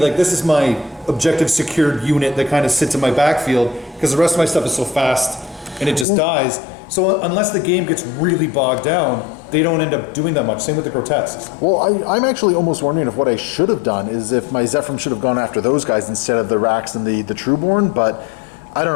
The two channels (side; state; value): right; drops out; at 6.1 s